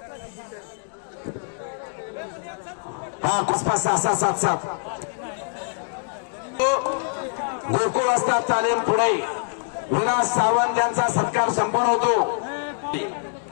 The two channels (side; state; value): right; silent; digital silence